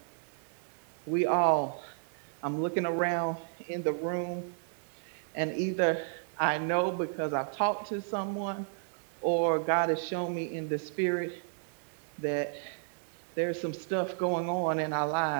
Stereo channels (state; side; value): silent; left; digital silence